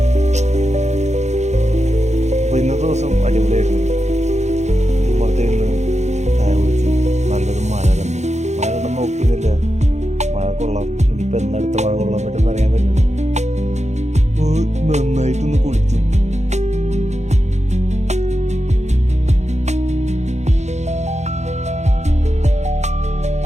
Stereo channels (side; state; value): left; late; 0.33 ms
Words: അപ്പോൾ ഇന്നത്തെ ദിവസം അടിപൊളിയായിരുന്നു. ഉമ്മർത്തിരുന്ന് ചായ കുടിച്ചു, നല്ലൊരു മഴ കണ്ടു. മഴ കണ്ടു നോക്കിയിരുന്നില്ല, മഴ കൊള്ളാം. ഇനിയിപ്പോൾ എന്നടുത്ത മഴ കൊള്ളാൻ പറ്റുമെന്ന് അറിയാൻ പറ്റില്ല. നന്നായിട്ടൊന്ന് കുളിച്ചു.